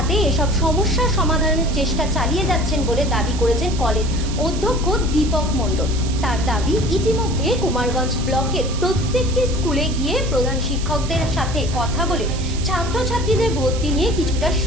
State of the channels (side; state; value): right; noise; hiss, 12 dB below the sound